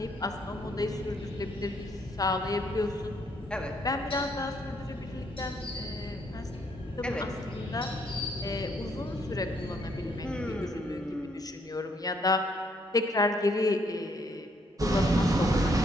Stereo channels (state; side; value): normal; both; correlation 0.70